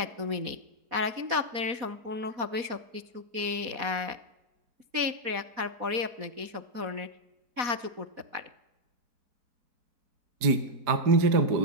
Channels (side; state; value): left; late; 4.1 ms